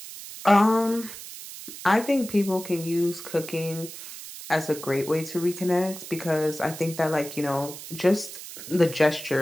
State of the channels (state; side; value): noise; right; hiss, 12 dB below the sound